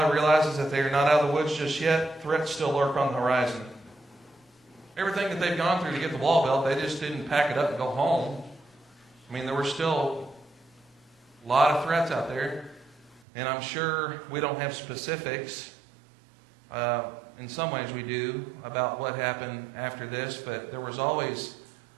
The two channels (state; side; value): drops out; left; at 13.2 s